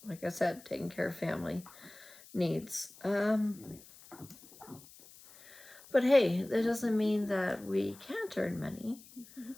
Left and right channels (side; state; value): left; noise; hiss, 21 dB below the sound